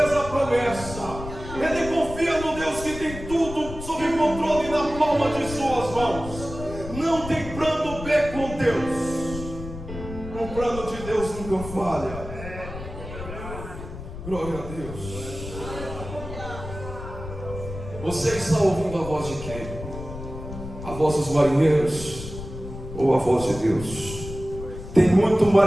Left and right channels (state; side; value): noise; left; rumble, 10 dB below the sound